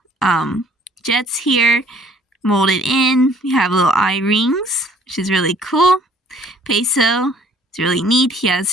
jets here molded in. We have little eye rings, which is really cool. Peso, it's really neat. He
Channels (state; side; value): normal; both; correlation 0.58